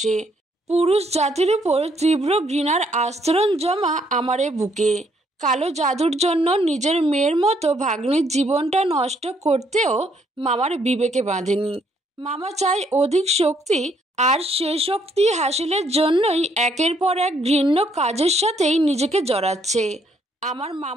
পুরুষ জাতির উপর তীব্র ঘৃণার আস্তরণ জমা আমার এ বুকে। কালো জাদুর জন্য নিজের মেয়ের মতো ভাগ্নির জীবনটা নষ্ট করতেও মামার বিবেকে বাঁধেনি। মামা চায় অধিক শক্তি, আর সে শক্তি হাসিলের জন্যই একের পর এক ঘৃণ্য কাজের সাথেই নিজেকে জড়াচ্ছে। আমার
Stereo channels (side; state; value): both; normal; correlation 0.69